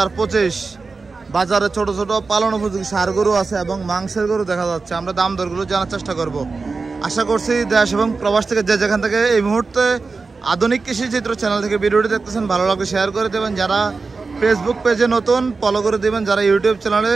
বাজারে ছোট ছোট পালন উপযোগী ষাঁড় গরু আছে এবং মাংসের গরু দেখা যাচ্ছে আমরা দাম দরগুলো জানার চেষ্টা করব আশা করছি দেশ এবং প্রবাস থেকে যে যেখান থেকে এই মুহূর্তে আধুনিক কৃষি চিত্র চ্যানেল থেকে ভিডিওটি দেখতেছেন ভালো লাগলে শেয়ার করে দেবেন যারা ফেসবুক পেজে নতুন ফলো করে দেবেন যারা ইউটিউব চ্যানেলে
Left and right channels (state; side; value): quieter; left; 4.2 dB